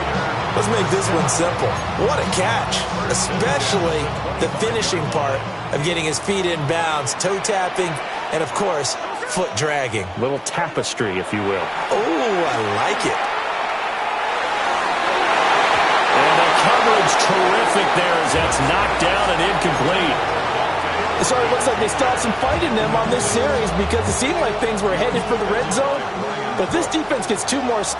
Let's make this one simple. What a catch, especially the finishing part of getting his feet in bounds, toe tapping, and of course, foot dragging. Little tapestry, if you will. Oh, I like it. And the coverage terrific there as that's knocked down and incomplete. So it looks like they still have some fight in them on this series because it seemed like things were headed for the red zone. But if this defense gets 2 more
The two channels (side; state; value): both; identical; correlation 1.00